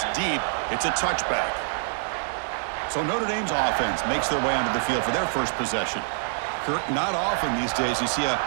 deep, it's a touchback. So Notre Dame's offense makes their way onto the field for their first possession. Kirk, not often these days you see a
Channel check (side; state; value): left; silent; 61 dB below the other